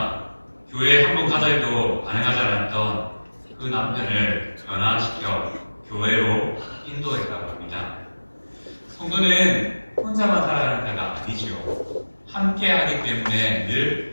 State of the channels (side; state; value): both; inverted; correlation -1.00